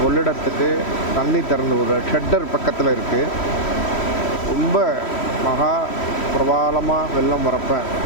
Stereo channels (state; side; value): late; right; 3.1 ms